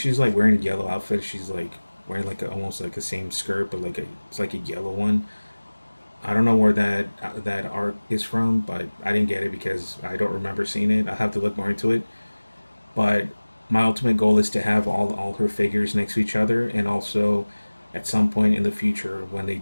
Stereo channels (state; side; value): inverted; both; correlation -1.00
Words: like wearing a yellow outfit. She's like wearing like almost like the same skirt, but it's like a yellow one. I don't know where that art is from, but I didn't get it because I don't remember seeing it. I have to look more into it. But my ultimate goal is to have all her figures next to each other, and also at some point in the future when they